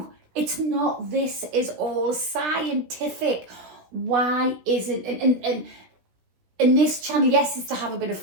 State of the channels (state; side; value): late; left; 16 ms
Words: it's not. This is all scientific. Why isn't, and this channel, yes, is to have a bit of